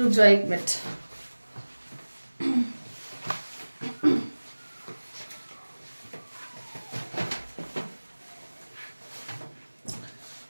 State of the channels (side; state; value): both; inverted; correlation -1.00